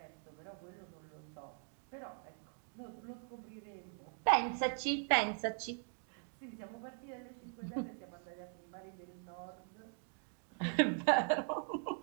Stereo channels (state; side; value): silent; left; 50 dB below the other